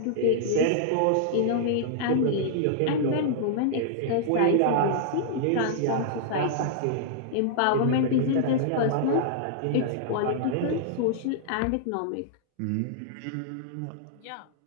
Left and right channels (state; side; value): different; both; correlation -0.01